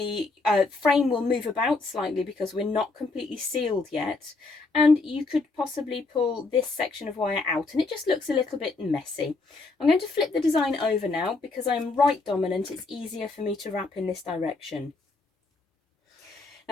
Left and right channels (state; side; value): quieter; right; 3.6 dB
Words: frame will move about slightly because we're not completely sealed yet, and you could possibly pull this section of wire out and it just looks a little bit messy. I'm going to flip the design over now because I'm right dominant. It's easier for me to wrap in this direction.